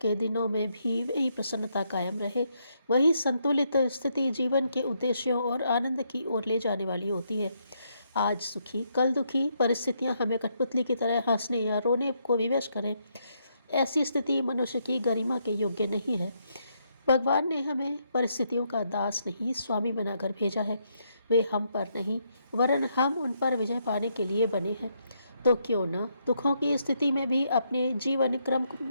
दिनों में भी वही प्रसन्नता कायम रहे, वही संतुलित स्थिति जीवन के उद्देश्यों और आनंद की ओर ले जाने वाली होती है। आज सुखी कल दुखी परिस्थितियां हमें कठपुतली की तरह हंसने या रोने को विवश करें, ऐसी स्थिति मनुष्य की गरिमा के योग्य नहीं है। भगवान ने हमें परिस्थितियों का दास नहीं, स्वामी बनाकर भेजा है। वे हम पर नहीं, वरन हम उन पर विजय पाने के लिए बने हैं। तो क्यों न दुखों की स्थिति में भी अपने जीवन क्रम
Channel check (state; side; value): inverted; both; correlation -0.76